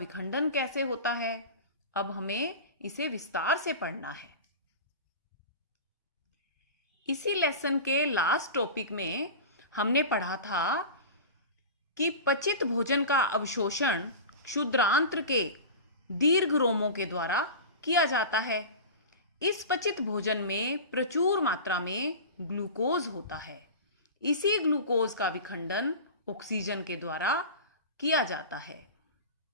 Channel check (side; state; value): both; inverted; correlation -0.31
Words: कैसे होता है, अब हमें इसे विस्तार से पढ़ना है। इसी लेसन के लास्ट टॉपिक में हमने पढ़ा था कि पचित भोजन का अवशोषण क्षुद्रांत्र के दीर्घ रोमों के द्वारा किया जाता है। इस पचित भोजन में प्रचुर मात्रा में ग्लूकोज होता है। इसी ग्लूकोज का विखंडन ऑक्सीजन के द्वारा किया जाता है